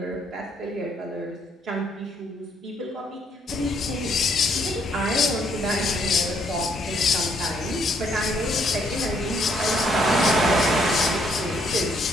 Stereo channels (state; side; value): normal; both; correlation 0.69